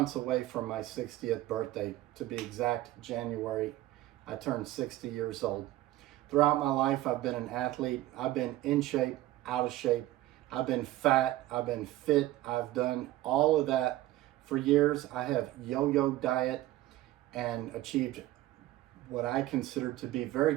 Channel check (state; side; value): quieter; left; 15.9 dB